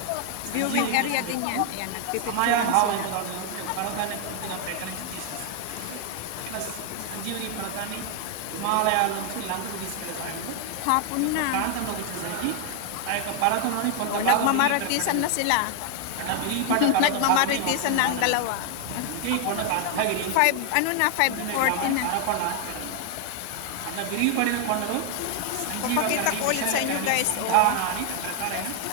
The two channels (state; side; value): different; both; correlation 0.00